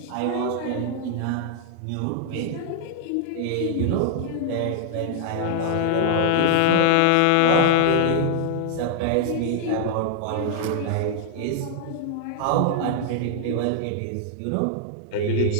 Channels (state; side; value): different; both; correlation 0.00